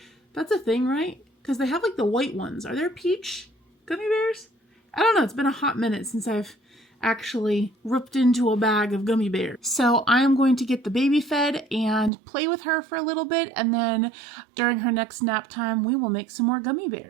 That's a thing, right? Because they have like the white ones. Are there peach gummy bears? I don't know. It's been a hot minute since I've actually ripped into a bag of gummy bears. So I am going to get the baby fed and play with her for a little bit. And then during her next nap time, we will make some more gummy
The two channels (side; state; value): left; drops out; at 12.1 s